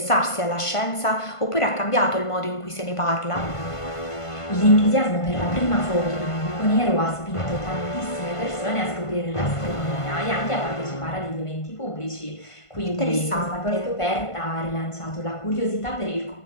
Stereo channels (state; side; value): late; right; 1.5 ms